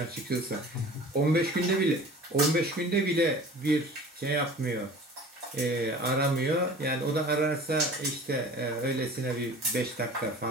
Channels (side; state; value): both; normal; correlation 0.43